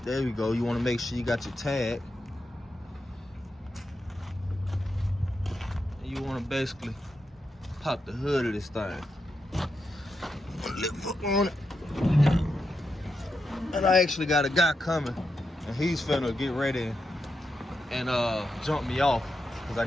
There we go. You want to make sure you got your tag. And you want to basically pop the hood of this thing. Lift up on it. And I actually got a guy coming, and he's finna get ready and jump me off because I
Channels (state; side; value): normal; both; correlation 0.86